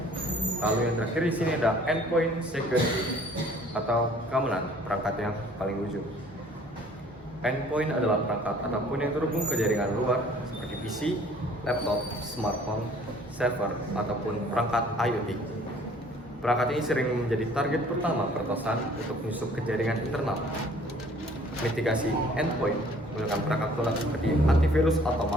Lalu yang terakhir di sini ada endpoint security atau keamanan perangkat yang paling ujung. Endpoint adalah perangkat apapun yang terhubung ke jaringan luar seperti PC, laptop, smartphone, server, ataupun perangkat IoT. Perangkat ini sering menjadi target pertama peretasan untuk menyusup ke jaringan internal. Mitigasi endpoint menggunakan perangkat lunak seperti antivirus atau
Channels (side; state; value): both; normal; correlation 0.55